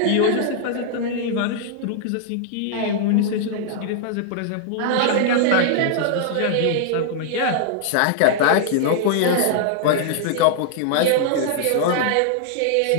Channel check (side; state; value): both; different; correlation -0.01